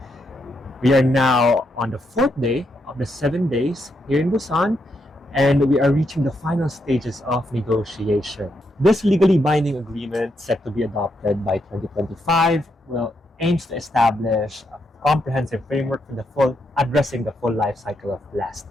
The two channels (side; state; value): both; normal; correlation 0.80